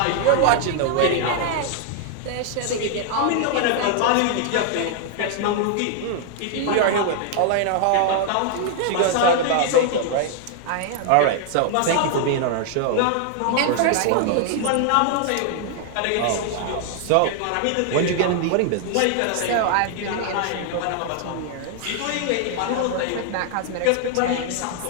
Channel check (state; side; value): different; both; correlation 0.00